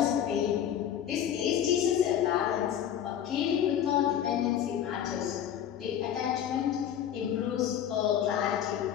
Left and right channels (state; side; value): quieter; right; 9.9 dB